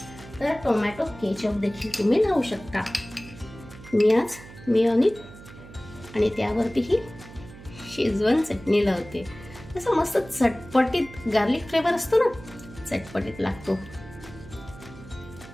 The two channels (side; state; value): right; noise; hum, 18 dB below the sound